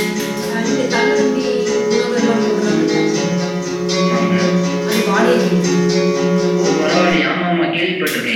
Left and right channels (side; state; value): both; identical; correlation 1.00